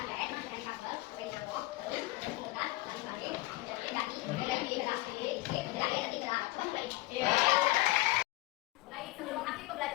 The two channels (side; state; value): right; quieter; 19.7 dB